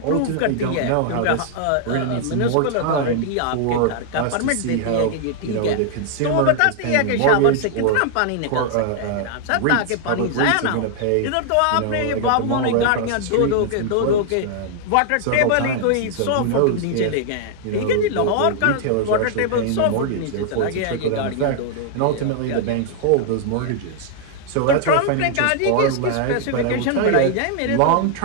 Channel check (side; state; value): both; different; correlation 0.00